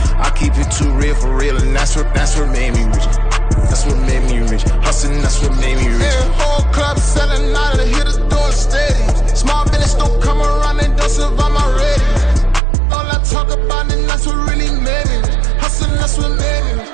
I keep it too real for real, and that's what made me rich. That's what made me rich. Hustling, that's what made me rich. Yeah, whole club selling out of hitters doing stadiums. Small business don't come around, they don't survive my radius. All I talk about, and that's what really made me rich. Hustling, that's what made me rich.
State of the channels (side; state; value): left; drops out; at 12.6 s